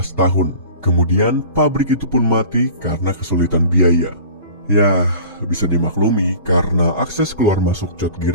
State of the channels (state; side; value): inverted; both; correlation -0.42